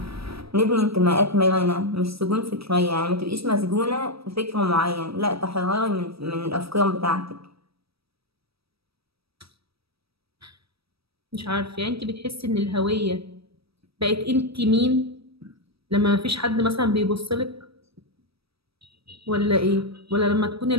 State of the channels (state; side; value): late; left; 0.77 ms